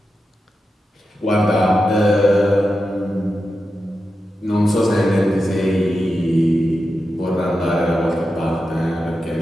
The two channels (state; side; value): normal; both; correlation 0.90